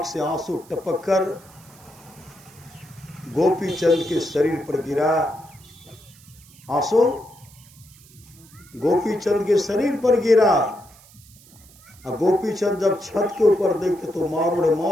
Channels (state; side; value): noise; right; hiss, 25 dB below the sound